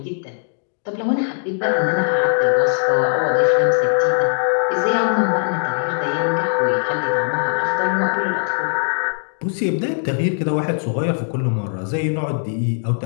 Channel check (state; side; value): silent; right; 66 dB below the other